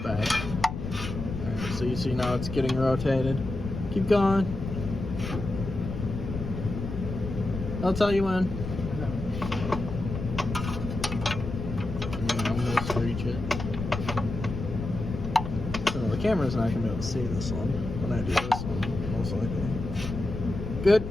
Alright, so you see now it's getting rotated. Keep going. I'll tell you when. Almost reach it. So the camera's not gonna be able to see this one when I do this one, most likely. Good.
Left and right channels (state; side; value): noise; left; rumble, 6 dB below the sound